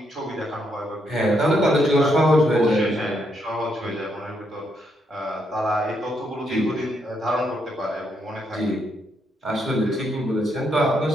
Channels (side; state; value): both; normal; correlation 0.77